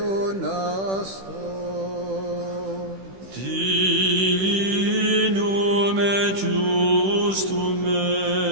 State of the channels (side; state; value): left; late; 16 ms